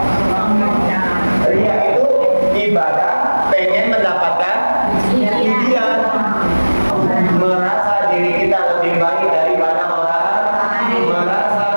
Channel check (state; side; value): inverted; both; correlation -1.00